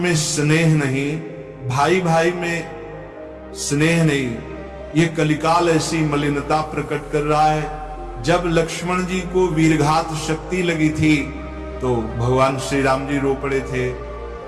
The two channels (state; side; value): identical; both; correlation 1.00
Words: स्नेह नहीं, भाई भाई में स्नेह नहीं। ये कलिकाल ऐसी मलिनता प्रकट कर रहा है। जब लक्ष्मण जी को वीरघात शक्ति लगी थी तो भगवान श्री राम जी रो पड़े थे।